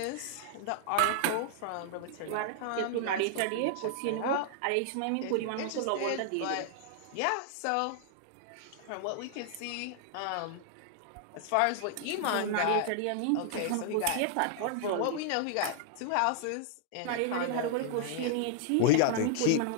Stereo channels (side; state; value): both; different; correlation -0.01